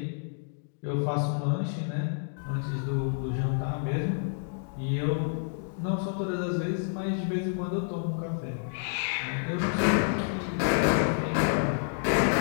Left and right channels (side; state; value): right; silent; digital silence